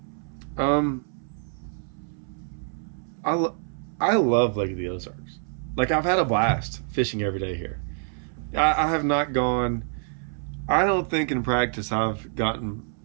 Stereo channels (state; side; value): silent; left; 61 dB below the other